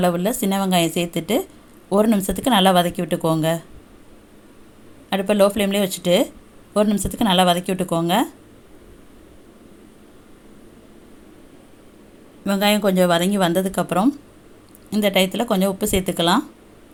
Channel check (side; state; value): both; identical; correlation 1.00